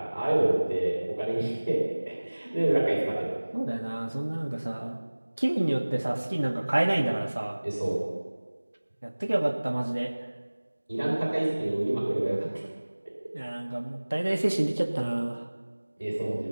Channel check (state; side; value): inverted; both; correlation -1.00